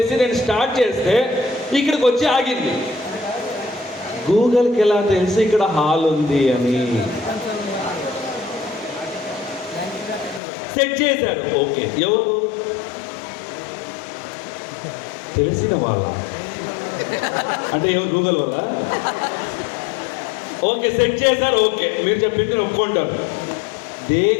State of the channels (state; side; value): drops out; right; at 10.4 s